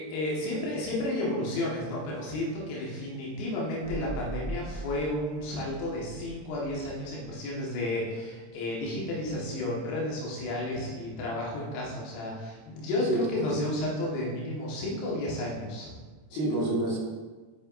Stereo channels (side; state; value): right; late; 26 ms